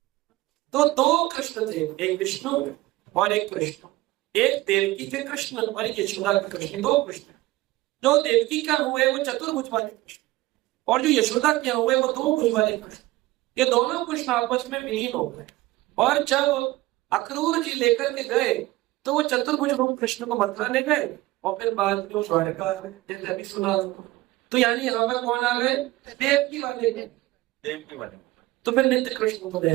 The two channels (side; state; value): left; quieter; 18.5 dB